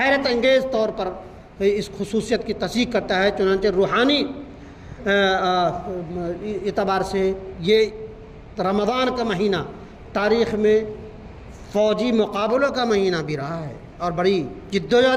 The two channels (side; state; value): both; identical; correlation 1.00